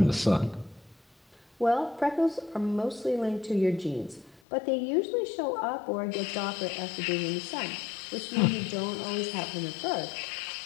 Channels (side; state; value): right; drops out; at 4.4 s